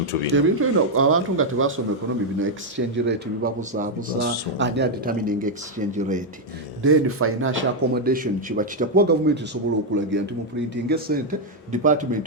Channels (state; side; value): normal; both; correlation 0.00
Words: bino abantu nga tebasoma economy bino exchange rate bibabuzaabuza ani determining exchange rate. Then financial accommodation kiba kitya kuba gavumenti esobola okulagira nti mu printing sente